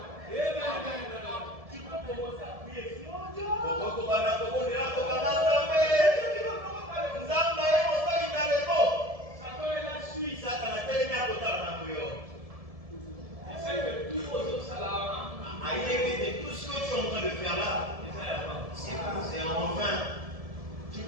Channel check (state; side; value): late; left; 1.7 ms